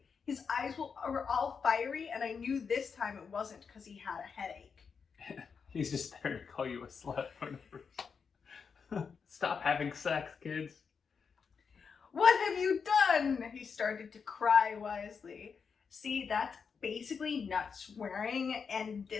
His eyes were all fiery, and I knew this time it wasn't because he had a headache. He's just there to call you a slut. Stop having sex, kids. What have you done? He started to cry wisely. See, that's basically not swearing, and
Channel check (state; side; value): quieter; right; 5.9 dB